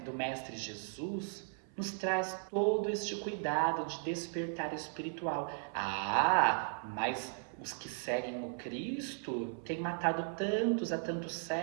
Mestre Jesus nos traz todo este cuidado de despertar espiritual. Ah, mas os que seguem o Cristo têm matado tantos há tantos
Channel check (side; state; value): left; silent; 53 dB below the other